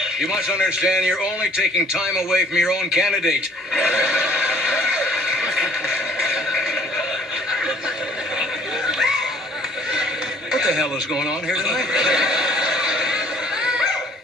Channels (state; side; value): normal; both; correlation 0.57